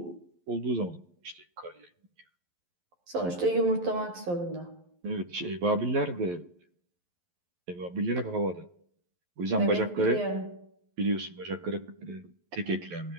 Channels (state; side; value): late; left; 11 ms